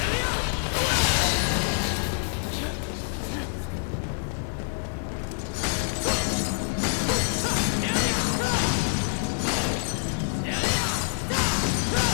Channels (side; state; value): right; silent; 61 dB below the other